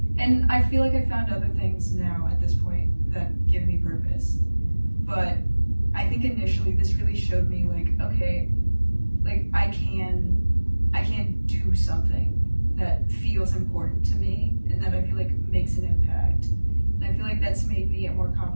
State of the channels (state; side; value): inverted; both; correlation -1.00